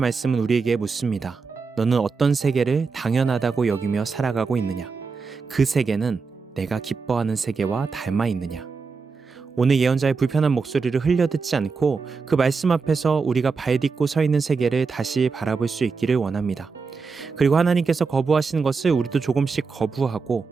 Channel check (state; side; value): quieter; left; 4.8 dB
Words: 우리에게 묻습니다. 너는 어떤 세계를 당연하다고 여기며 살아가고 있느냐? 그 세계는 내가 기뻐하는 세계와 닮아 있느냐? 오늘 예언자의 불편한 목소리를 흘려듣지 않고 그 말씀 앞에서 우리가 발딛고 서 있는 세계를 다시 바라볼 수 있기를 원합니다. 그리고 하나님께서 거부하시는 것을 우리도 조금씩 거부하고